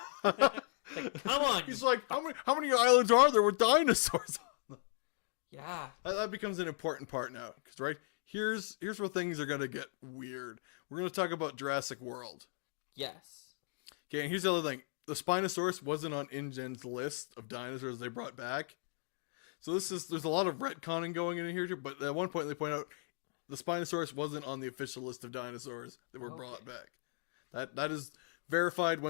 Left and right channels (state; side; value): silent; right; 53 dB below the other